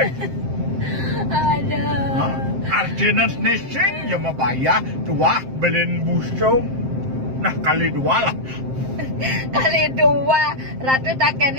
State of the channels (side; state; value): left; late; 7.6 ms